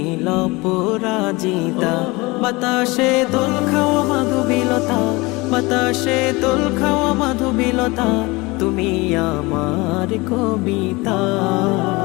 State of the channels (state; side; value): quieter; right; 23.7 dB